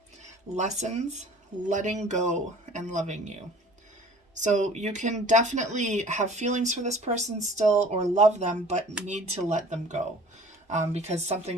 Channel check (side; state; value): both; normal; correlation 0.47